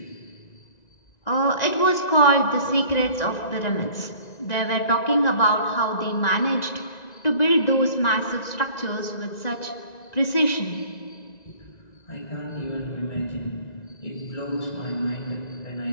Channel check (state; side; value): late; right; 1.9 ms